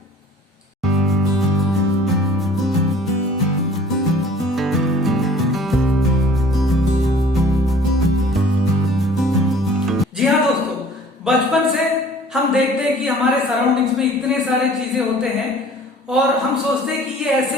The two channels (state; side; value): normal; both; correlation 0.50